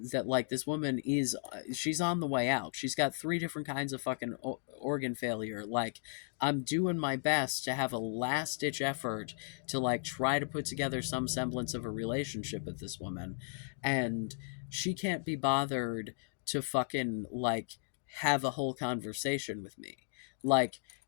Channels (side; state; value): right; silent; digital silence